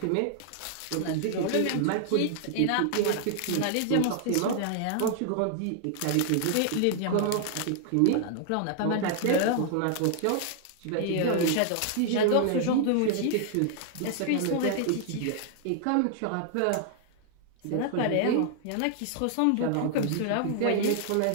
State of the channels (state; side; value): different; both; correlation -0.01